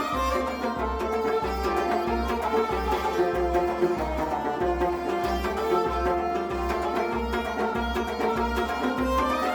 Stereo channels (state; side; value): identical; both; correlation 1.00